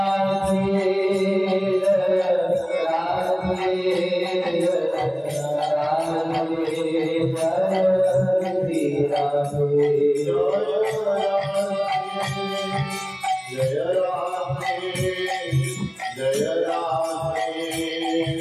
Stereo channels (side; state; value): both; identical; correlation 1.00